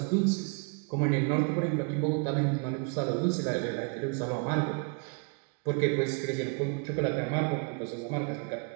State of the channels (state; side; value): quieter; left; 35.5 dB